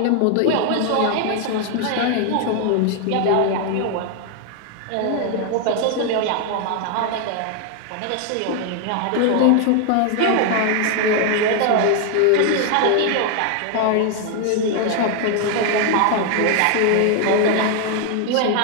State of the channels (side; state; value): both; different; correlation 0.00